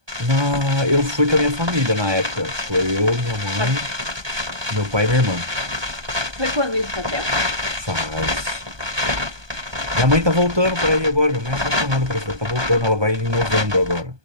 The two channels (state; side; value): late; left; 1.2 ms